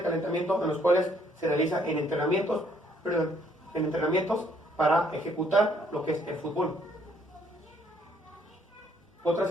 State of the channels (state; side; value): normal; both; correlation 0.66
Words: calentamiento en los cuales se realiza en entrenamientos para ejecutar lo que es el fútbol. Otra